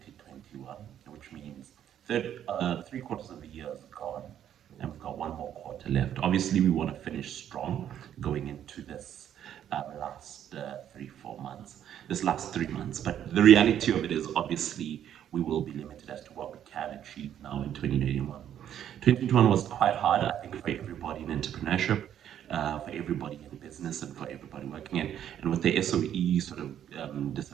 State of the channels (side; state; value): left; quieter; 10.2 dB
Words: which means three quarters of the year is gone, and we've got one more quarter left. Obviously, we want to finish strong going into this last 3 4 months, this last 3 months. But the reality of it is, obviously, we will be limited as to what we can achieve now in 2021. 2021 was quite hard, I think, for everybody in entrepreneurship, for everybody in business, and for everybody working in. And with the SOE sort of